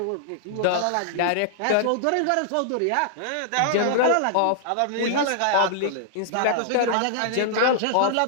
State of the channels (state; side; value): different; both; correlation -0.01